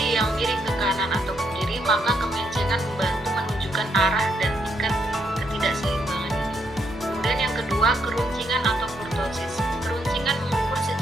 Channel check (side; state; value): both; normal; correlation 0.75